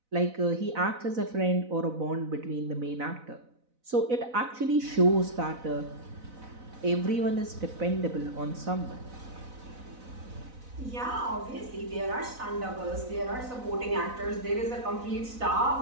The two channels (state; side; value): late; left; 4.0 ms